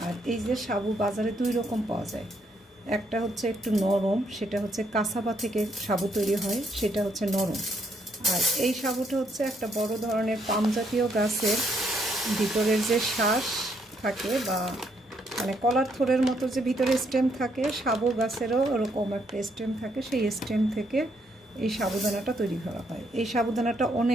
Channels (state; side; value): normal; both; correlation 0.73